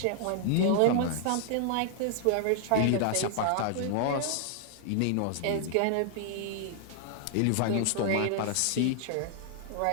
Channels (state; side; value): different; both; correlation -0.01